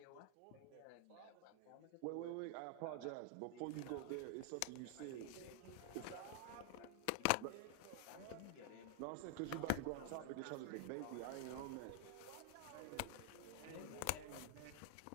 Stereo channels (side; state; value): both; different; correlation -0.01